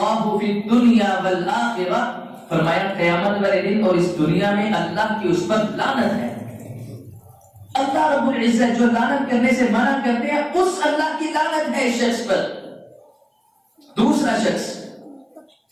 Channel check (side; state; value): both; identical; correlation 1.00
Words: فی الدنیا والآخرہ, فرمایا قیامت والے دن اور اس دنیا میں اللہ کی اس پر لعنت ہے. اللہ رب العزت جو لعنت کرنے سے منع کرتے ہیں اس اللہ کی لعنت ہے اس شخص پر. دوسرا شخص